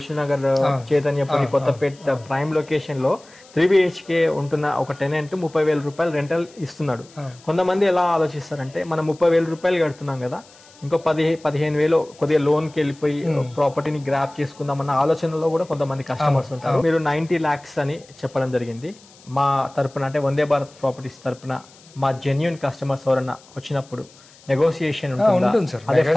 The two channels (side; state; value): left; noise; hiss, 25 dB below the sound